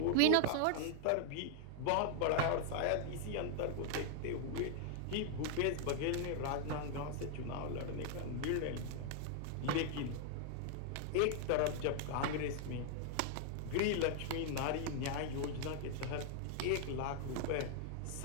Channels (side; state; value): both; different; correlation 0.00